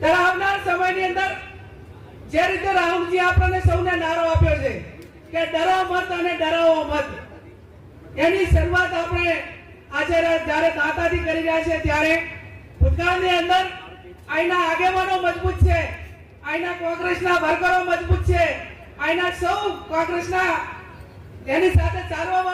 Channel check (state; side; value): identical; both; correlation 1.00